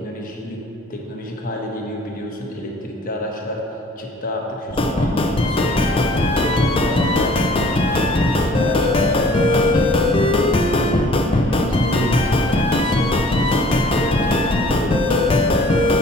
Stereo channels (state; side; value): normal; both; correlation 0.53